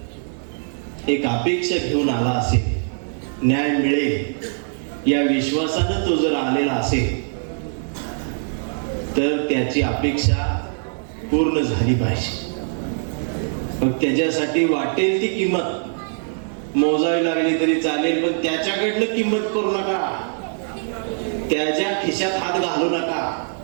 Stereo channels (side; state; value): left; silent; digital silence